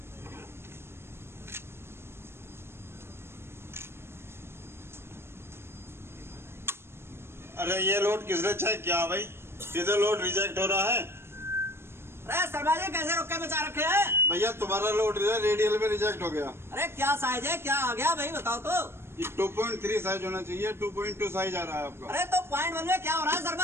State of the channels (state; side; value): late; left; 0.12 ms